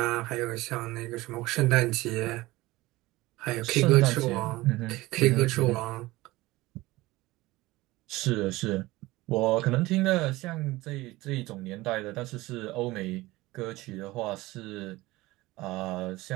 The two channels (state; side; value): quieter; left; 19.4 dB